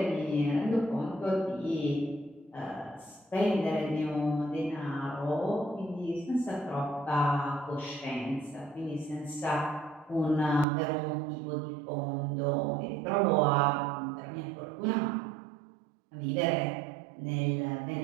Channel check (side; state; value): left; drops out; at 10.7 s